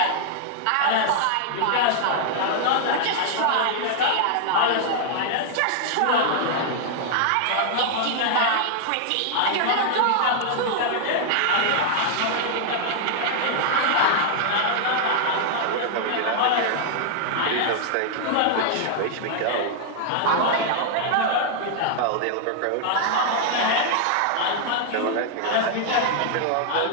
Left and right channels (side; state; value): both; different; correlation -0.01